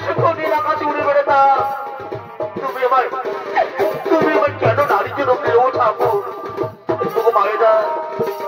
সুখ নিয়ে আকাশে উড়ে বেড়াতাম তুমি আমার কেন নারী জনম দিলে ও ঠাকুর তবু মায়েরা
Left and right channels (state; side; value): identical; both; correlation 1.00